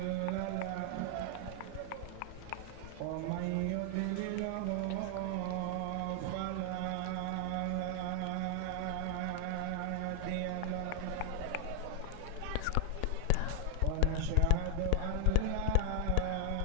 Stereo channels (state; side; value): different; both; correlation 0.00